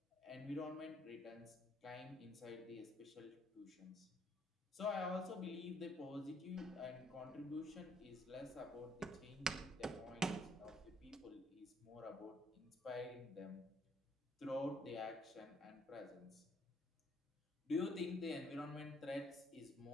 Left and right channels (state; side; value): normal; both; correlation 0.67